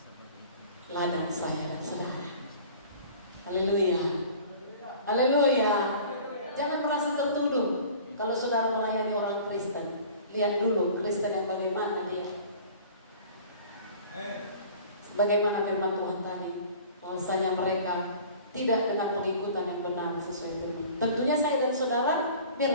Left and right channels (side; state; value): both; inverted; correlation -0.44